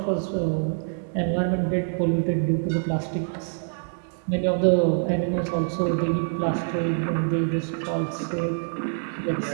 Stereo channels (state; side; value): silent; left; digital silence